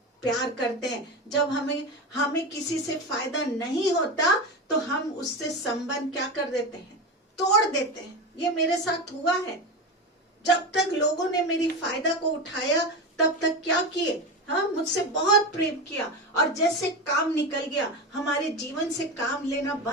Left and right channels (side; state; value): both; normal; correlation 0.21